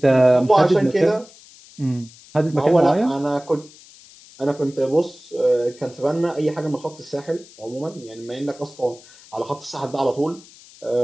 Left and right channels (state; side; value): noise; left; hiss, 23 dB below the sound